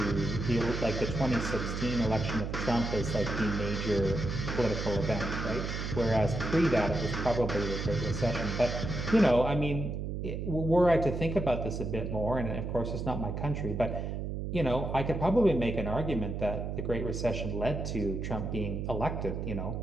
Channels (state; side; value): noise; right; hum, 4 dB below the sound